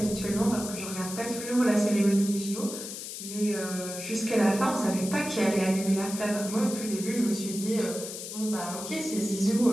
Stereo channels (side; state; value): left; noise; hiss, 8 dB below the sound